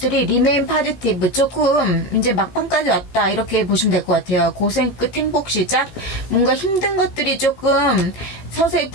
remain positive, 조금 이제 막판까지 왔다, 이렇게 보시면 될 것 같아요. 고생 끝 행복 시작, 뭔가 힘든 것들이 조금 서서히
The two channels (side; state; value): right; late; 17 ms